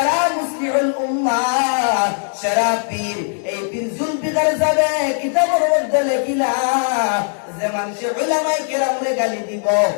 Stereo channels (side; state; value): right; silent; digital silence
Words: মুসলিহুল উম্মাহ সারা পীর। এই পীর জুলফিকার যাবে কিতাবের মধ্যে লেখিলা যে মানুষে উলামায়ে কেরামরে গালি দিব,